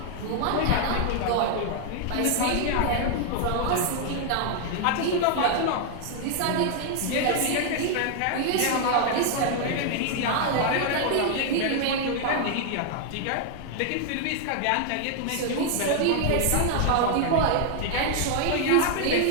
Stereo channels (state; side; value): different; both; correlation 0.00